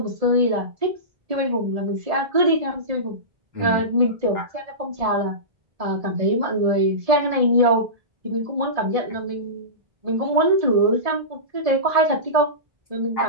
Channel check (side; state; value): left; late; 1.7 ms